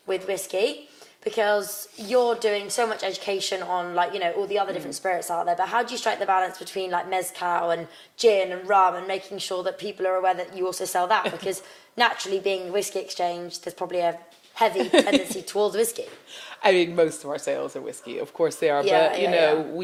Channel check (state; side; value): identical; both; correlation 1.00